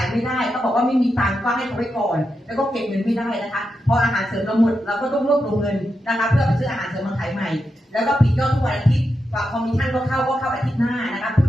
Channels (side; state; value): both; normal; correlation 0.87